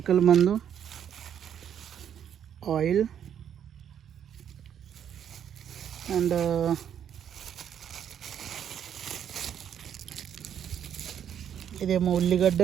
మందు, ఆయిల్ అండ్ ఇదేమో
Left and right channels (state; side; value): quieter; left; 9.1 dB